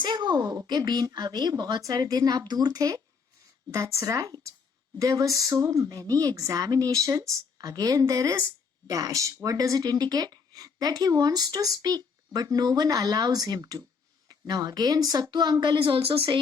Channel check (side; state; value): right; quieter; 5.4 dB